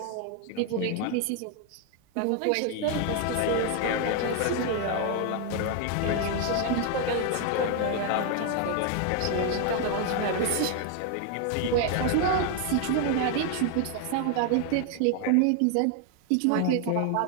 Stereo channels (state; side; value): different; both; correlation 0.01